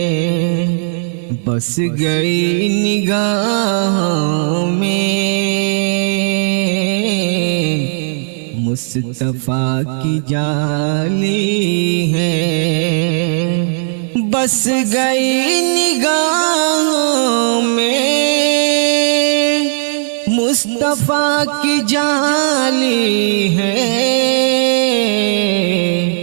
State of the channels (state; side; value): silent; left; digital silence